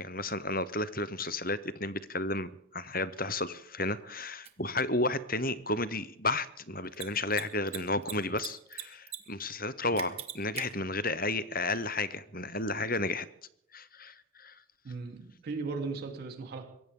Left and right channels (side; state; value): both; normal; correlation 0.13